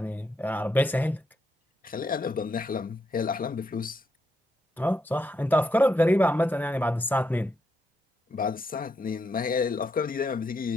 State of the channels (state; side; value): normal; both; correlation 0.80